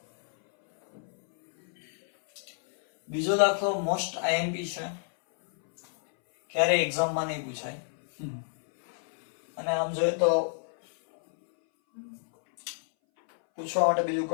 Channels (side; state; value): right; silent; 59 dB below the other